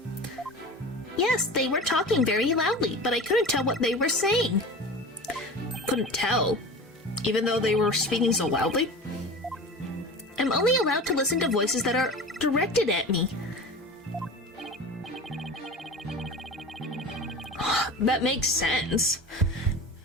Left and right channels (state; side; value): normal; both; correlation 0.34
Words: Yes, they were talking very loudly, but I couldn't tell what they were saying. Couldn't tell? Even though they were speaking so loudly? I'm only allowed to listen to voices that are directed at me. That makes sense.